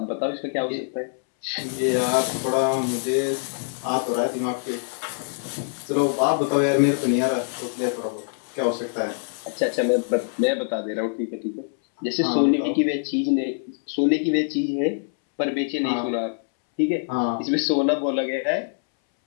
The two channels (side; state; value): right; silent; 62 dB below the other